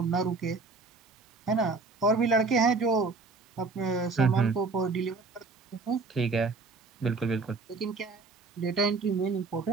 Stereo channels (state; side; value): quieter; left; 4.1 dB